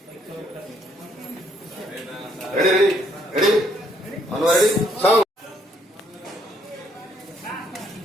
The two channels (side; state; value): both; normal; correlation 0.69